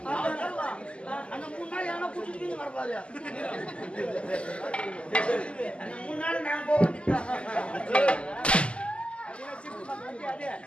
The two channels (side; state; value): right; late; 0.054 ms